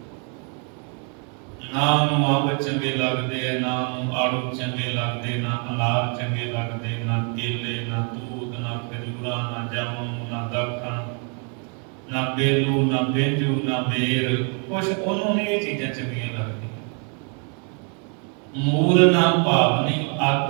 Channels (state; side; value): quieter; left; 38.9 dB